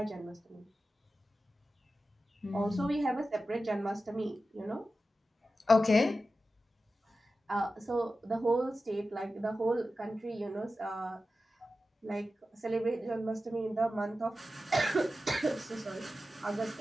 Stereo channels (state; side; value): normal; both; correlation 0.93